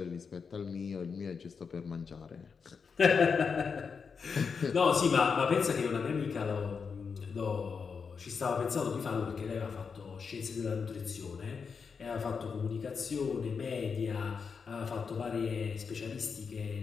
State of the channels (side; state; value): right; quieter; 5.7 dB